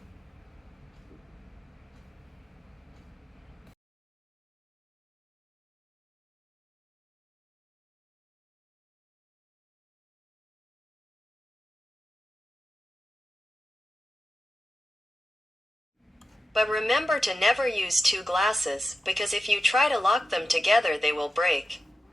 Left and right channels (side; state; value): both; normal; correlation 0.91